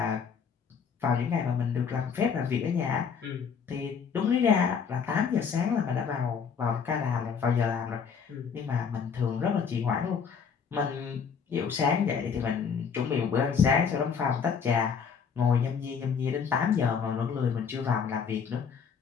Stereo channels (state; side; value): quieter; right; 6.5 dB